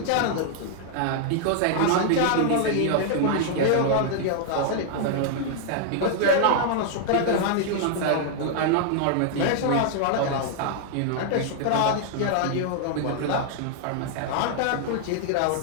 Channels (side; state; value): both; different; correlation -0.01